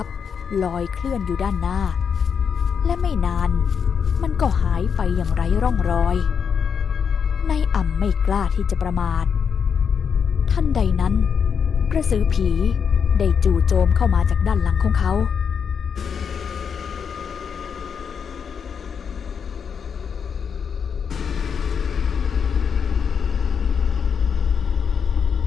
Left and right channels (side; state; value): right; quieter; 6.8 dB